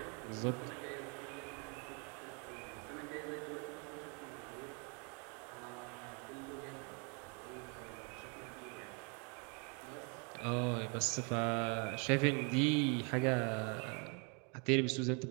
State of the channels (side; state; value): left; quieter; 35.2 dB